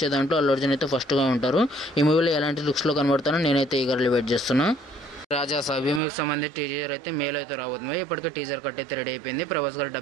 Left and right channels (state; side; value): drops out; left; at 6.0 s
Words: దాంట్లో అల్లు అర్జున్ అయితే ఫస్ట్గా ఉంటారు. ఈ మూవీలో ఎలాంటి లుక్స్లో కనబడతానో నేనైతే ఈగర్లీ వెయిట్ చేస్తున్నా. రాజా సాబ్ ఈ మూవీకి సంబంధించి టీజర్ అయితే మేలో అయితే రాబోతుంది. ఇప్పటికే టీజర్ కట్ అయితే రెడీ అయిపోయింది. ప్రభాస్ గారు